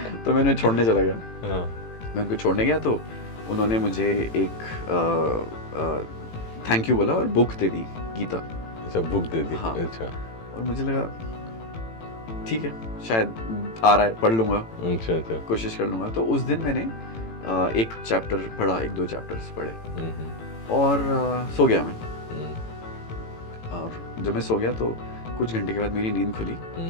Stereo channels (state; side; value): late; right; 18 ms